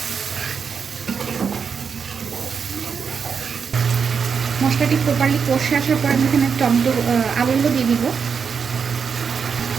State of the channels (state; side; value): quieter; left; 6.2 dB